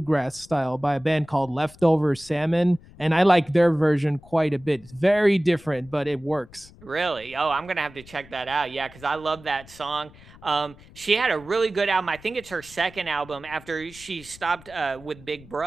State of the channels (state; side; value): noise; left; rumble, 22 dB below the sound